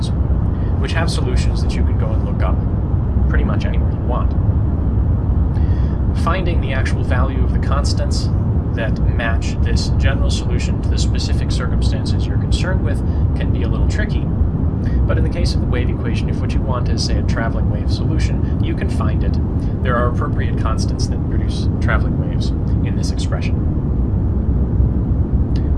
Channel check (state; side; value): identical; both; correlation 1.00